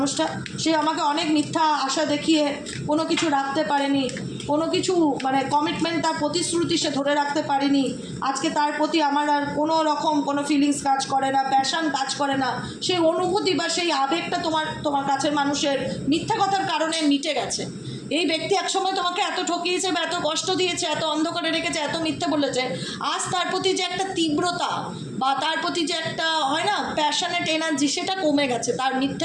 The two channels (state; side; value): identical; both; correlation 1.00